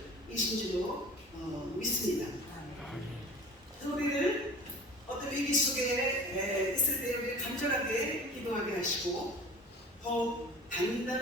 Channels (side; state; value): both; normal; correlation 0.42